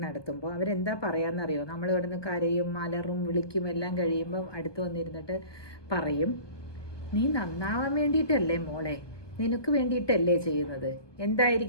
നടത്തുമ്പോൾ അവരെന്താ പറയാന്നറിയോ? നമ്മൾ ഇവിടുന്ന് കരയും മലറും വിളിക്കും എല്ലാം കഴിയുമ്പോൾ അടുത്ത് വന്നിരുന്നിട്ട് പറയും, നീ നന്നാവാൻ വേണ്ടിയിട്ടല്ലേ മോളെ, നിനക്ക് വേണ്ടിയിട്ടല്ലേ ചെയ്യുന്നത്.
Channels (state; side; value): late; right; 1.2 ms